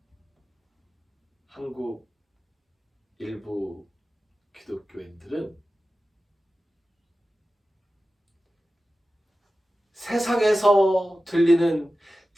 한국 일부 기독교인들은 세상에서 들리는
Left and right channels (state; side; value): normal; both; correlation 0.94